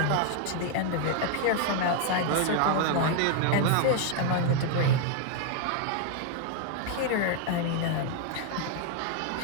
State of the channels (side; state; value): both; different; correlation 0.00